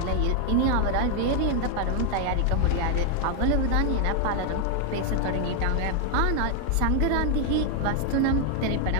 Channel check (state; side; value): different; both; correlation 0.00